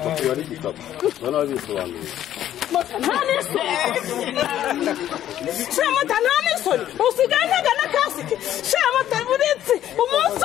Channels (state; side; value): quieter; right; 11.7 dB